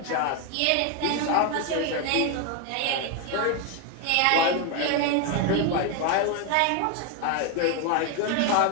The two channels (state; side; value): different; both; correlation 0.01